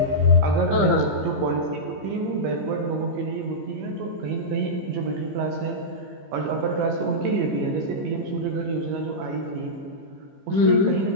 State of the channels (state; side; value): late; left; 15 ms